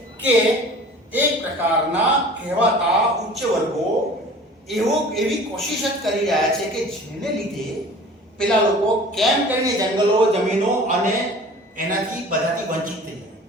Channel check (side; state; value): both; normal; correlation 0.44